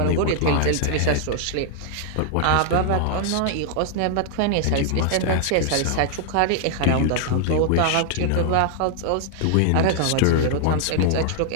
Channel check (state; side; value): different; both; correlation 0.00